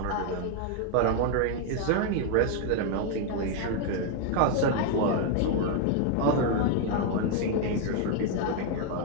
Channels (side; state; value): both; different; correlation 0.01